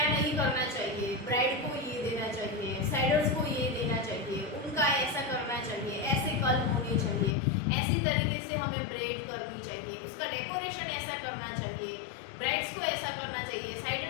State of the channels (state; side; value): drops out; right; at 7.4 s